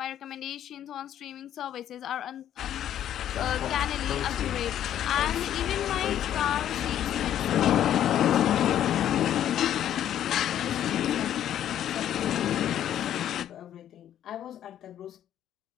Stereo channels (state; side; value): quieter; right; 10.9 dB